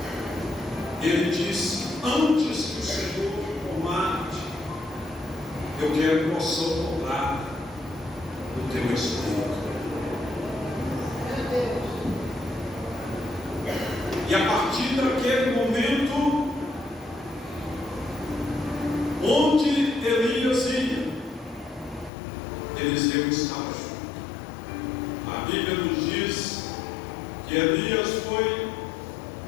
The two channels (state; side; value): drops out; right; at 22.1 s